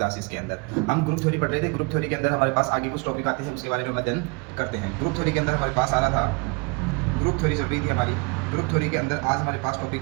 के अंदर। हम ग्रुप थ्योरी पढ़ रहे थे। ग्रुप थ्योरी के अंदर हमारे पास आगे कुछ टॉपिक आते हैं, उसके बारे में अध्ययन करते हैं। ग्रुप थ्योरी के अंदर हमारे पास आ रहा था, ग्रुप थ्योरी चल रही थी हमारी। ग्रुप थ्योरी के अंदर आज हमारे पास टॉपिक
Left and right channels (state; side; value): quieter; left; 30.1 dB